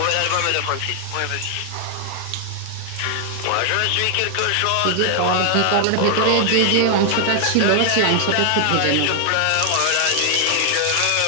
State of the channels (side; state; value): both; different; correlation 0.00